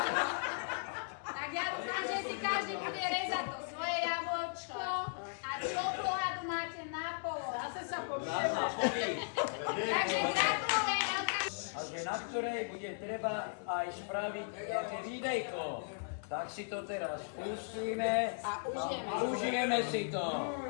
Tak ja dúfam, že si každý bude rezať to svoje jablčko a čokoládu máte na polo. Zase sa pobijeme. Takže gratulujem, Elka. A že na ktorej bude treba aj spraviť nejaké videjko. Tak si to teraz pustíme a užijeme si to.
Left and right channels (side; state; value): right; silent; digital silence